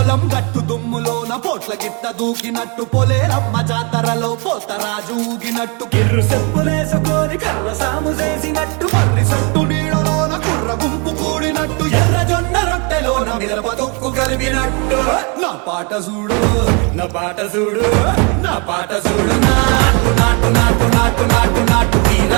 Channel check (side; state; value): left; quieter; 32.8 dB